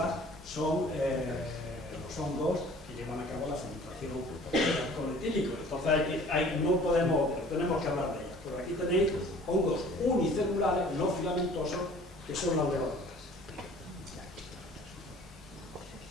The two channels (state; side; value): normal; both; correlation 0.50